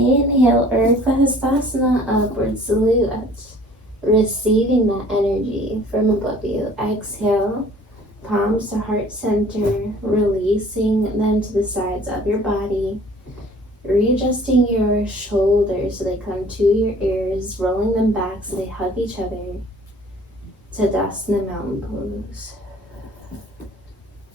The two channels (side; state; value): both; normal; correlation 0.52